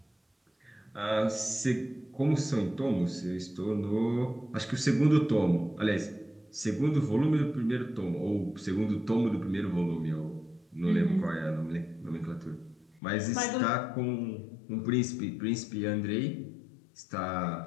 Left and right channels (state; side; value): drops out; right; at 13.0 s